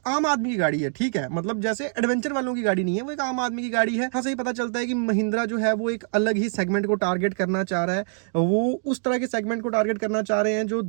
आम आदमी की गाड़ी है, ठीक है, मतलब जैसे एडवेंचर वालों की गाड़ी नहीं है, वो एक आम आदमी की गाड़ी है। हाँ, सही पता चलता है कि महिंद्रा जो है वो एक अलग ही सेगमेंट को टारगेट करना चाह रहा है। वो उस तरह के सेगमेंट को टारगेट करना चाह रहे हैं जो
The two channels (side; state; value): left; silent; 62 dB below the other